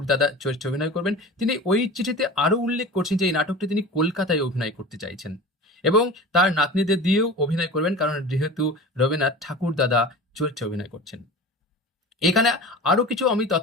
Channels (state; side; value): normal; both; correlation 0.35